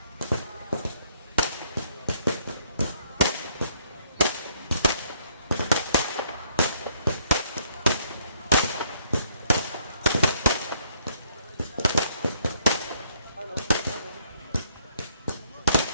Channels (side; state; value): both; inverted; correlation -0.67